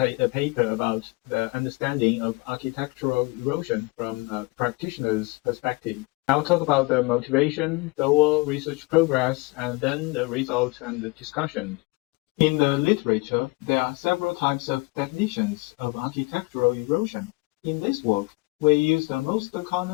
a paper about the understanding of architectural erosion from a practitioner's perspective. I'll talk about the motivation, goal, research progress, and then the result and the discussion. In the literature, there are several types of definitions of architectural erosion. In this work, we use the most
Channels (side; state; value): right; quieter; 26.1 dB